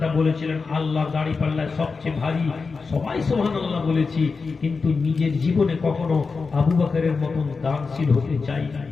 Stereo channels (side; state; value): right; quieter; 4.6 dB